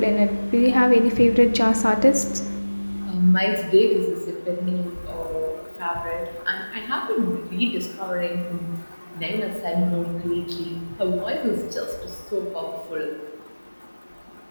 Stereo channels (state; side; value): inverted; both; correlation -1.00